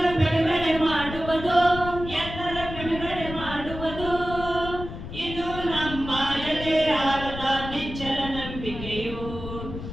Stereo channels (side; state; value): left; noise; rumble, 10 dB below the sound